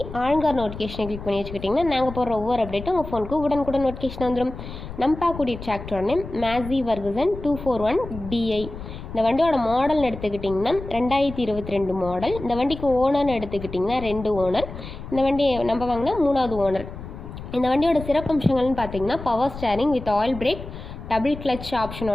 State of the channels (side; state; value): left; noise; rumble, 11 dB below the sound